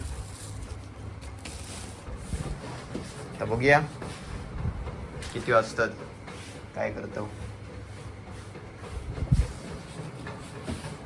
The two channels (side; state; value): both; identical; correlation 1.00